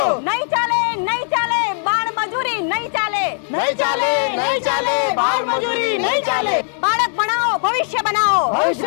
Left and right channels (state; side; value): silent; right; digital silence